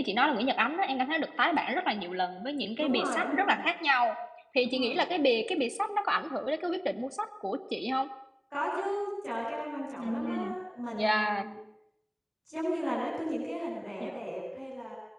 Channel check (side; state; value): both; identical; correlation 1.00